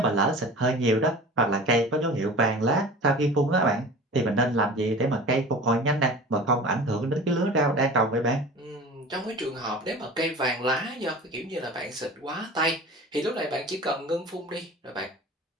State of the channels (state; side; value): normal; both; correlation 0.38